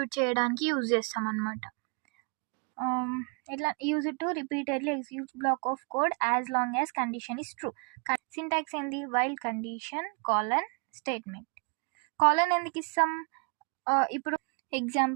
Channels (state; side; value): quieter; left; 36.1 dB